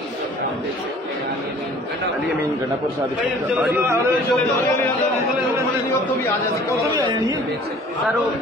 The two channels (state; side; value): normal; both; correlation 0.51